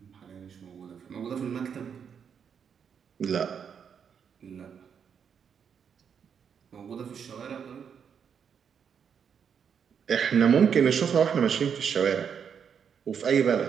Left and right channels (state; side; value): quieter; left; 7.3 dB